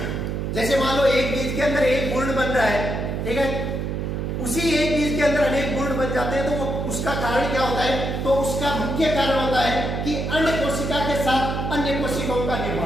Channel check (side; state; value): right; noise; hum, 2 dB below the sound